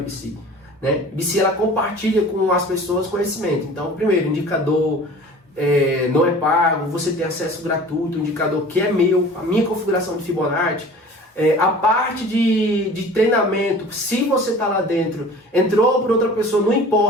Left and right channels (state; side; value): normal; both; correlation 0.43